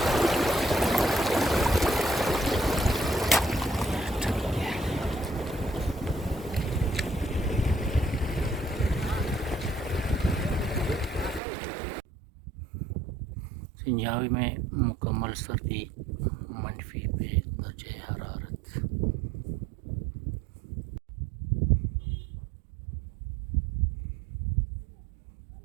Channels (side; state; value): left; drops out; at 11.4 s